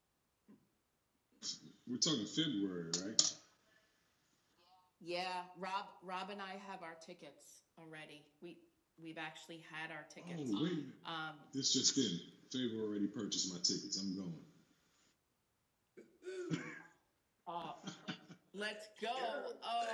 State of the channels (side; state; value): both; identical; correlation 1.00